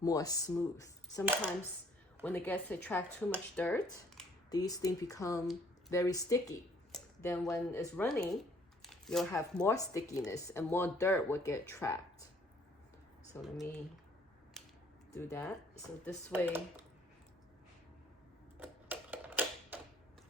smooth. Sometimes when it gets to attract too much dirt, these things become very sticky. Then when it's running, you'll have more stickiness and more dirt will get trapped. So let me do that. So this way,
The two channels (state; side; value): normal; both; correlation 0.60